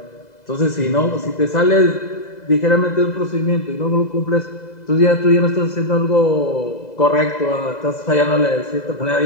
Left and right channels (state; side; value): late; right; 2.0 ms